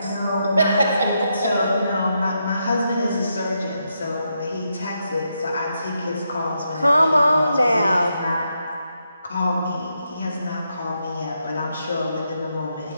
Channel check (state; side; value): inverted; both; correlation -0.82